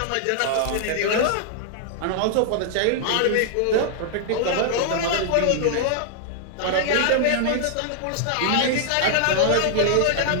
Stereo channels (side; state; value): both; different; correlation -0.01